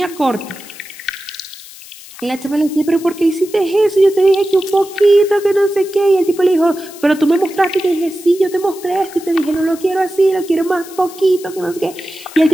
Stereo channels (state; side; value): noise; left; hiss, 18 dB below the sound